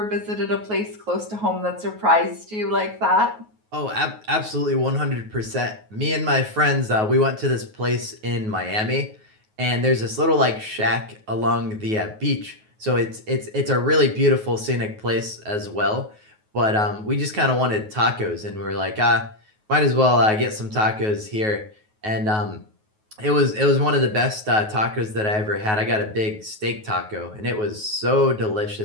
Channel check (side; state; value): left; late; 9.4 ms